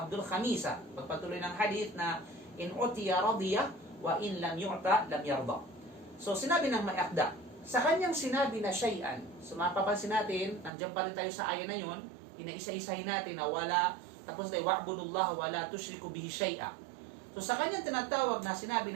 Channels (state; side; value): drops out; left; at 10.7 s